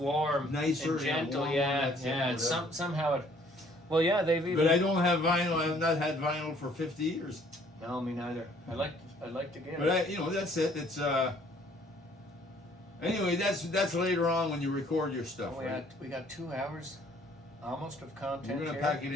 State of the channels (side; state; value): both; normal; correlation 0.60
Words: Nicer, and gentle, warm, yeah, that's it, yeah. It's whatever. somehow it. Well, yeah, they've even. But I don't have vinyl. I have not had vinyl for 50 years. No, me neither. I like to get But it. that's it. It's Anyway, that's later on when you record your stuff. Right? We got 2 hours, almost of content. We're gonna here. pack it